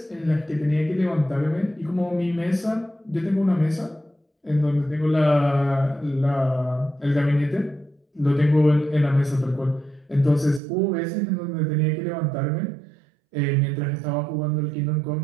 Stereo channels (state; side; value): drops out; left; at 10.6 s